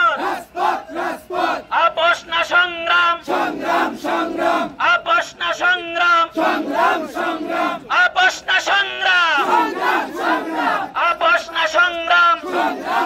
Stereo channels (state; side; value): identical; both; correlation 1.00